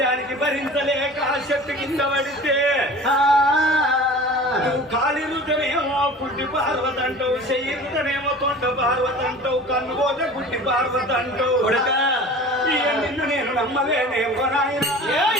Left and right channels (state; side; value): normal; both; correlation 0.40